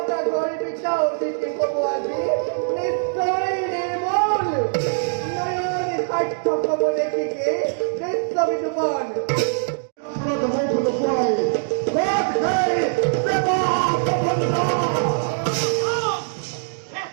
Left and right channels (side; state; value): left; silent; digital silence